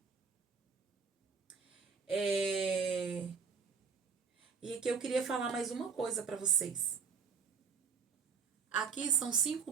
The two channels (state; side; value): quieter; left; 5.8 dB